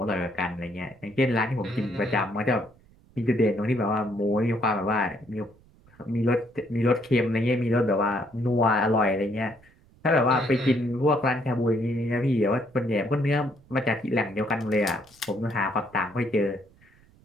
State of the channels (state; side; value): noise; right; rumble, 29 dB below the sound